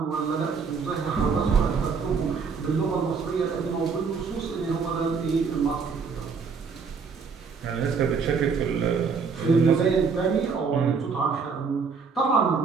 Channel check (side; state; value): left; quieter; 5.4 dB